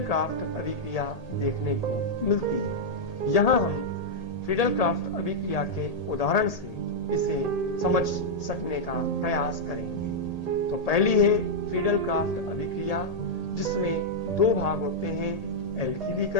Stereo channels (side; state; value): right; late; 1.8 ms